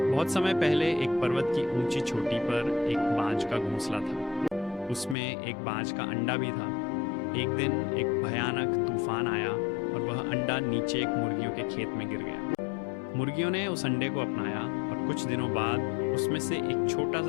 बहुत समय पहले एक पर्वत की ऊंची चोटी पर एक बाज का घोंसला था। उसमें एक बाज का अंडा भी था। एक दिन एक भयानक तूफान आया और वह अंडा नीचे एक मुर्गियों के खेत में गिर गया। मुर्गियों ने उस अंडे को अपनाया और कुछ दिनों बाद उसमें से एक छोटा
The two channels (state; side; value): drops out; right; at 5.2 s